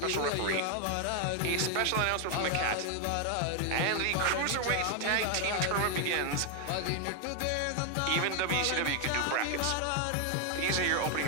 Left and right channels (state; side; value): different; both; correlation 0.00